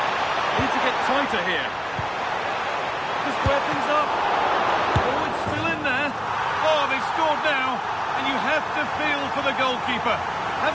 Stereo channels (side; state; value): both; identical; correlation 1.00